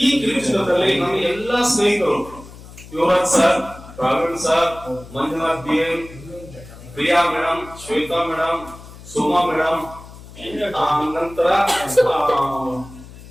ಈ ಕಿರುಚಿತ್ರದಲ್ಲಿ ನಮ್ಮ ಎಲ್ಲಾ ಸ್ನೇಹಿತರು Yuvraj sir, Praveen sir, Manjunath B M, Priya madam, Shweta madam, Suma madam, ನಂತರ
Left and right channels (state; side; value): noise; left; hum, 18 dB below the sound